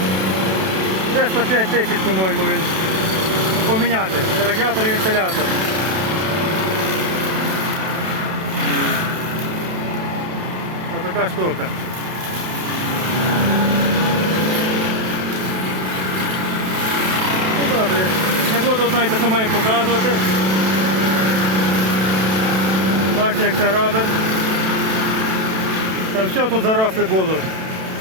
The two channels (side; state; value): left; late; 32 ms